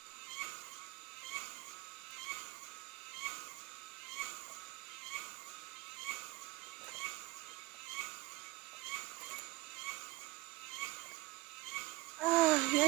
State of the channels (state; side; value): quieter; left; 21.0 dB